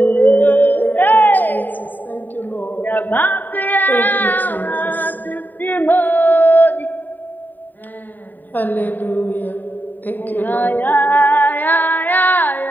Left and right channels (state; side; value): late; right; 0.089 ms